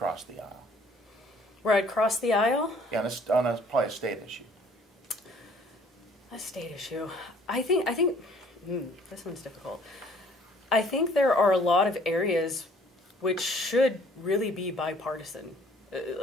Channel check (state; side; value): normal; both; correlation 0.57